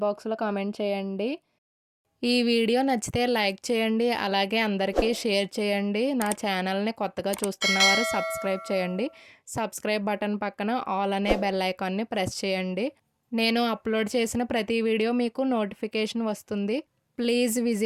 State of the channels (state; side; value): identical; both; correlation 1.00